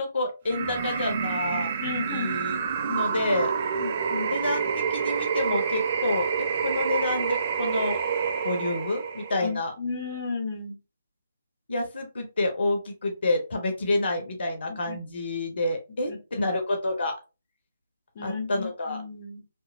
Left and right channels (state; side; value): inverted; both; correlation -0.72